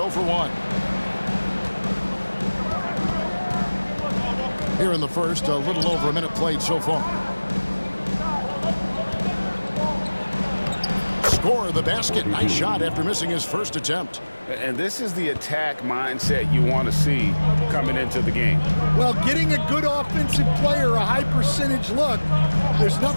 for 1. Here in the first, a little over a minute played so far. Score the basket. Nice shot after missing his first attempt. And this is the attack mindset you want to see coming into the game. Well, getting a good offensive player a high percentage look, there's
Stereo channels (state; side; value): inverted; both; correlation -1.00